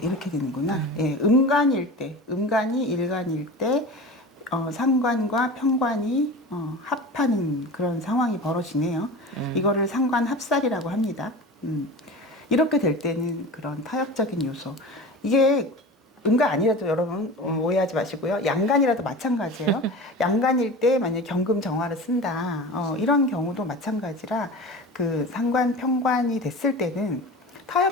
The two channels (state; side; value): normal; both; correlation 0.33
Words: 되는구나. 예, 음간일 때, 음간이 일간일 때, 상관과 편관이 합하는 그런 상황이 벌어지네요. 이거를 상관 합살이라고 합니다. 이렇게 될 때는 그런 타협적인 요소. 이게 음간 아니라도 여러분 오해하지 마시고요. 양간이라도 마찬가지예요. 양간일 때 만약에 경금 정화를 쓴다. 이런 경우도 마찬가지라 그 상관 편관이 됐을 때는